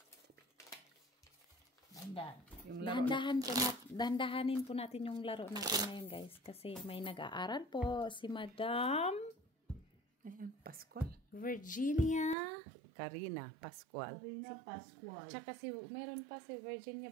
Dandan. Dahan-dahanin po natin yung laro natin ngayon guys. Kasi may nag-aaral po si Madam Ayan, Pascual. Virginia. Karina Pascual. Karina Pascual. Tsaka meron pa si Virginia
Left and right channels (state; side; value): drops out; left; at 12.4 s